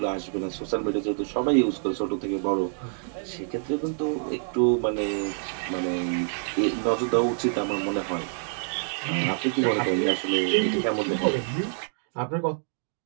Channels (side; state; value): left; silent; digital silence